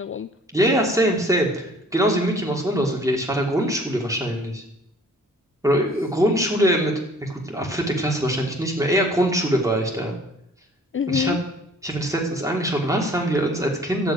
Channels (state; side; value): normal; both; correlation 0.54